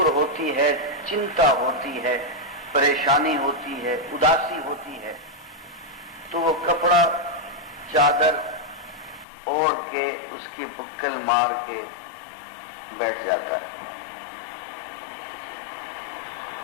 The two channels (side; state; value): right; drops out; at 9.2 s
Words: ہوتی ہے، چنتا ہوتی ہے، پریشانی ہوتی ہے، اداسی ہوتی ہے، تو وہ کپڑا چادر اوڑھ کے اس کی بکل مار کے بیٹھ جاتا ہے۔